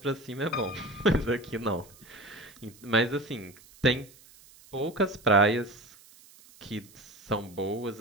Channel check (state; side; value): noise; right; hiss, 24 dB below the sound